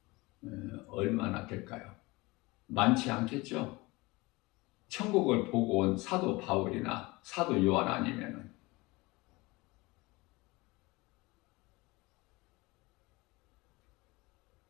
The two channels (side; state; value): right; quieter; 23.0 dB